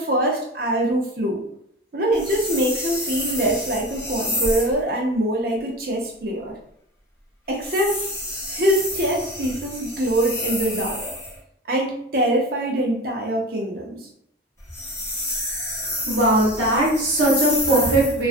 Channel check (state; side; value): normal; both; correlation 0.31